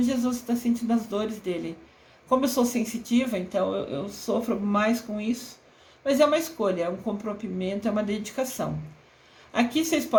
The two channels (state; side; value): identical; both; correlation 1.00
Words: Jesus, você está sentindo as dores dele. Como eu sou sensitiva, então eu sofro mais com isso. Mas é uma escolha, é um comprometimento, é uma dedicação. Aqui vocês